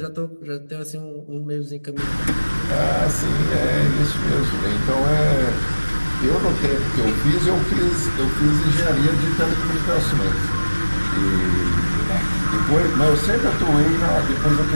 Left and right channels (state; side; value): inverted; both; correlation -1.00